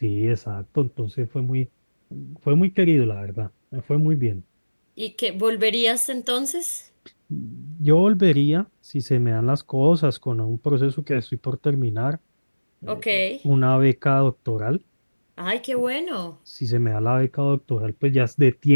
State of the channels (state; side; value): inverted; both; correlation -1.00